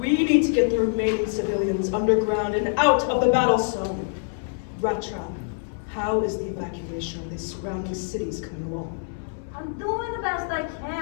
need to get the remaining civilians underground and out of the battle zone. Rattrap, how is the evacuation of these surrounding cities coming along? I'm doing the best I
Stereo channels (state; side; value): silent; right; 62 dB below the other